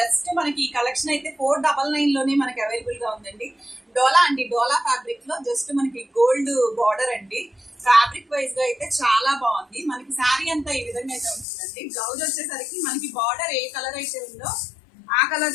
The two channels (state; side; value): drops out; right; at 11.5 s